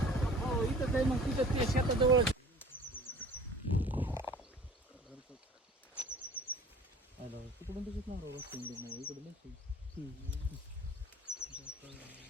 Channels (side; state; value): both; normal; correlation 0.46